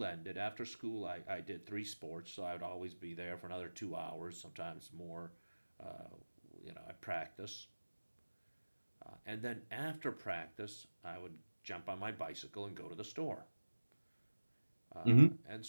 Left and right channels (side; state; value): both; inverted; correlation -1.00